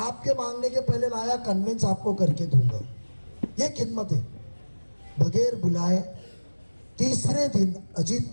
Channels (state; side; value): inverted; both; correlation -1.00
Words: मांगने के पहले लाया, कन्वेंस आपको करके दूंगा। ये खिदमत है। बगैर बुलाए तीसरे दिन अजीत